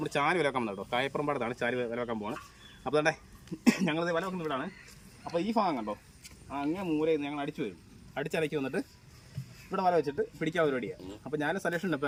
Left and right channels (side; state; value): both; identical; correlation 1.00